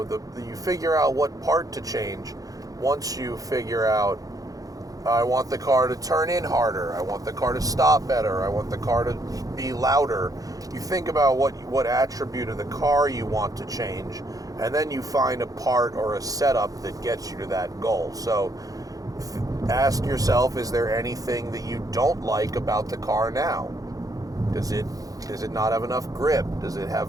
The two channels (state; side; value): late; left; 0.17 ms